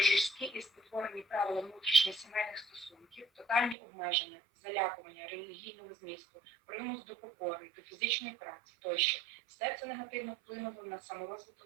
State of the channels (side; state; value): left; drops out; at 3.8 s